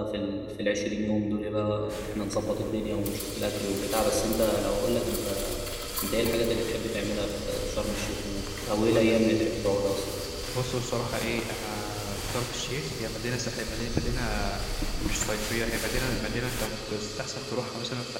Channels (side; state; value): both; identical; correlation 1.00